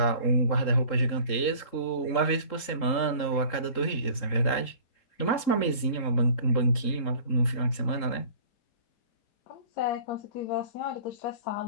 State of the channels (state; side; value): late; right; 3.7 ms